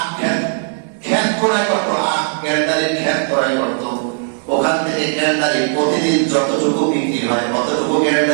ক্ষেত করাই করতো, আখ গ্যান্ডারির ক্ষেত করাই করতো। ওখান থেকে গ্যান্ডারি প্রতিদিন যতটুকু বিক্রি হয় অতটুকু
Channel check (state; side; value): silent; left; 61 dB below the other